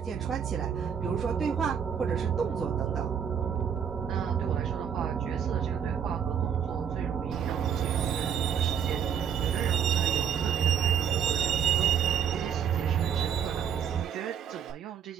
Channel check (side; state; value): left; quieter; 8.1 dB